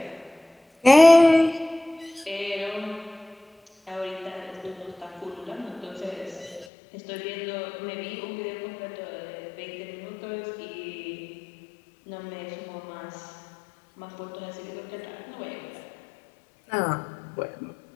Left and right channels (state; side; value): drops out; right; at 6.7 s